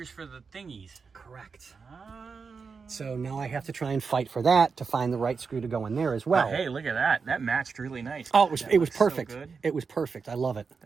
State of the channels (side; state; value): left; quieter; 5.2 dB